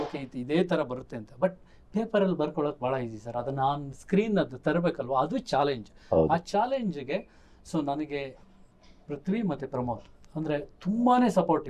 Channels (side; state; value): both; identical; correlation 1.00